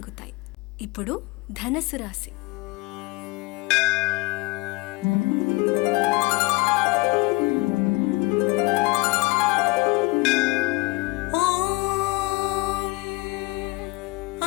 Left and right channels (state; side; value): quieter; right; 24.2 dB